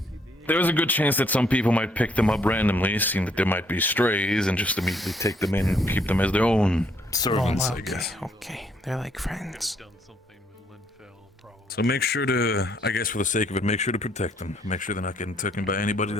there's a good chance that some people might pick them up randomly, seeing that there might be strays, and just immediately take them in and keep them as their own servants, I guess. Okay, they're like friends. So make sure to, I guess for the sake of it, make sure to protect them. Make sure they're not getting taken by anybody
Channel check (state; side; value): normal; both; correlation 0.69